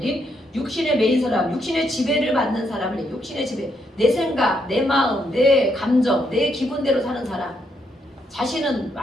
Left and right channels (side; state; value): both; normal; correlation 0.76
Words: 육신의 메인 사람, 육신의 지배를 받는 사람을 육신의 지배, 내 생각, 내 마음, 내 감정, 내 기분대로 사는 사람. 자신은